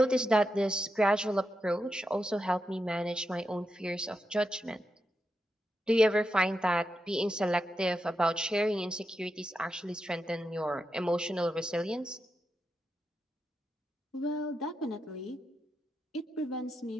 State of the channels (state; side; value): normal; both; correlation 0.87